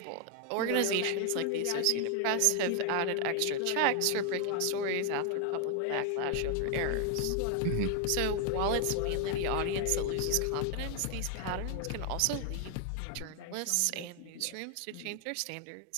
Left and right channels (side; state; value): both; different; correlation 0.00